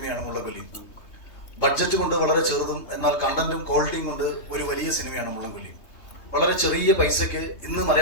മുള്ളൻകൊല്ലി. ബഡ്ജറ്റ് കൊണ്ട് വളരെ ചെറുതും എന്നാൽ കണ്ടന്റും ക്വാളിറ്റിയും കൊണ്ട് ഒരു വലിയ സിനിമയാണ് മുള്ളൻകൊല്ലി. വളരെ ചെറിയ പൈസയ്ക്ക് ഇന്ന്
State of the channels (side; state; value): right; late; 3.3 ms